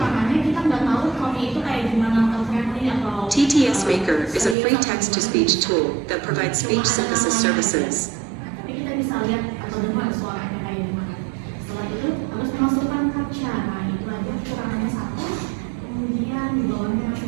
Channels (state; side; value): drops out; left; at 4.5 s